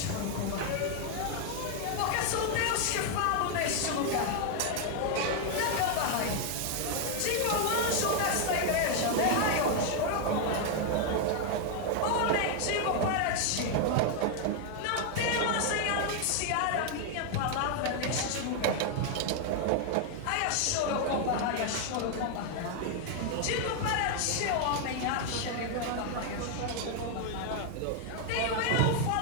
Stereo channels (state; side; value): different; both; correlation 0.00